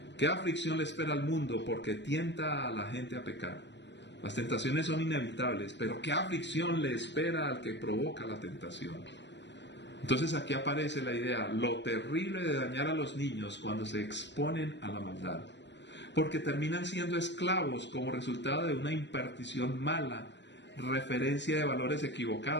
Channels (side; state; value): right; late; 0.52 ms